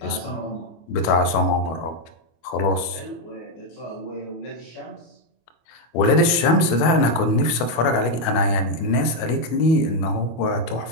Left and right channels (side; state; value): right; late; 25 ms